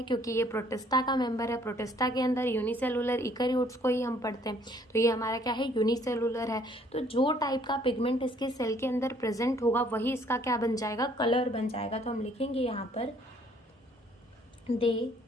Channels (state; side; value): normal; both; correlation 0.62